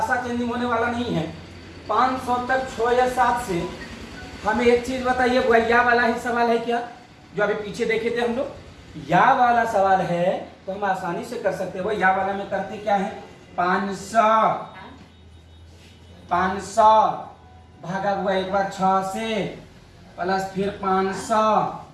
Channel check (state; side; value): identical; both; correlation 1.00